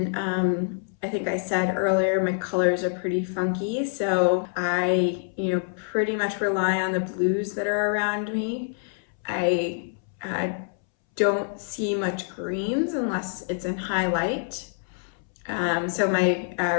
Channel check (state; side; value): silent; right; 61 dB below the other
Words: I think I said earlier, my colors are pretty funky. So I, pretty much rely on the blues that are around me. I don't see much greens unless it's in high light. So my